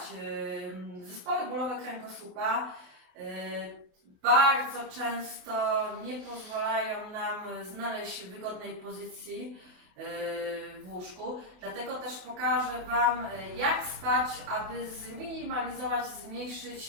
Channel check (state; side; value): late; left; 28 ms